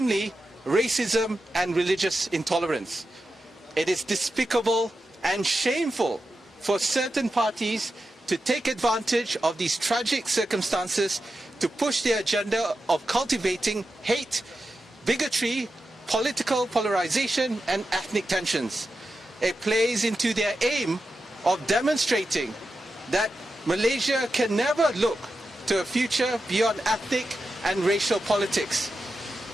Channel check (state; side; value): normal; both; correlation 0.90